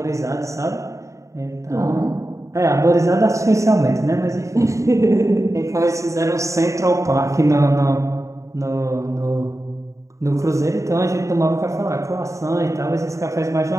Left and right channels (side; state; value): left; late; 0.15 ms